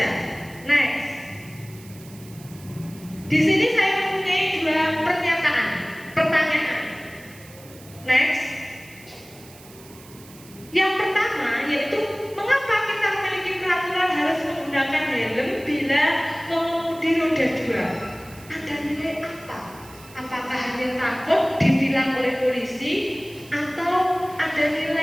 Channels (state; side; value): noise; right; hiss, 21 dB below the sound